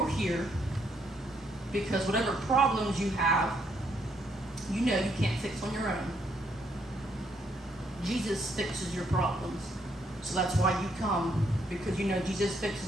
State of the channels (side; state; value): both; normal; correlation 0.73